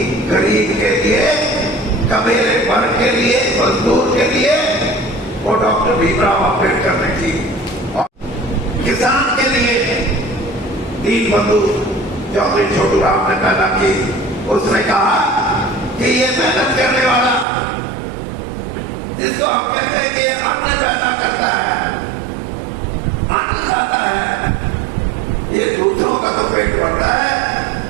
गरीब के लिए, कबीले वर्ग के लिए, मजदूर के लिए, वो डॉक्टर भीमराव अम्बेडकर ने की। और किसान के लिए दीन बंधु चौधरी छोटू राम ने पैदा की। उसने कहा कि ये मेहनत करने वाला, जिसको हम कहते हैं कि अन्न पैदा करता है, अन्न खाता है, ये दूसरों का तो पेट भरता है,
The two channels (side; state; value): left; drops out; at 17.4 s